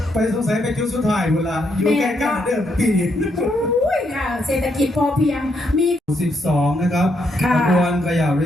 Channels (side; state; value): both; normal; correlation 0.77